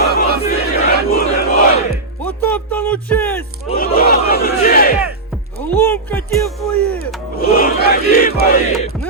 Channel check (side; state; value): left; quieter; 3.2 dB